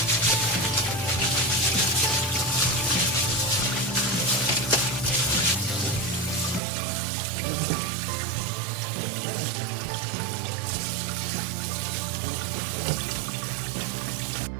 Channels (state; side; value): drops out; left; at 6.6 s